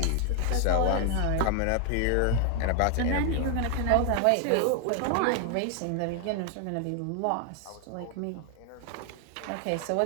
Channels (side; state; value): both; different; correlation 0.00